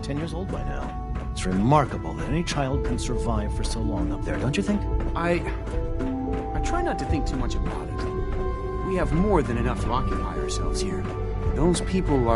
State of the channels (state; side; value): identical; both; correlation 1.00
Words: years old by now. It's remarkable that any child can survive for so long up there, don't you think? I try not to think too much about it. We have more than enough to occupy ourselves here. Those people